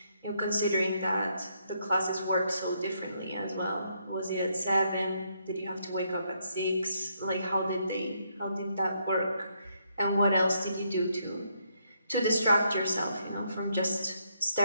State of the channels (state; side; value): inverted; both; correlation -0.75